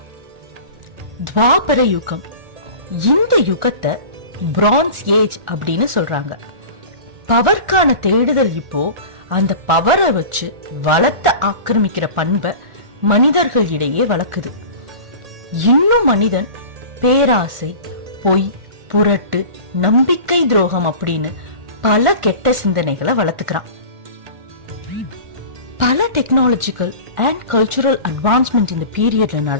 துவாபர யுகம், இந்த யுகத்தை பிரான்ஸ் ஏஜ் அப்படின்னு சொல்றாங்க. பவர்க்கான தேடுதல் இப்போ அந்த பவரை வச்சு வளத்தை ஆக்கிரமிக்கிற பண்பை மனிதர்கள் இடையே வளர்க்குது. இன்னும் மனிதன் பேராசை, பொய், புரட்டு, நம்பிக்கை துரோகம் அப்படின்னு பல கெட்ட சிந்தனைகளை வளர்த்துக்கிறான். பல டெக்னாலஜிக்கல் அண்ட் கல்ச்சுரல் அட்வான்ஸ்மெண்ட் இந்த பீரியட்ல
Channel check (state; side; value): late; left; 1.4 ms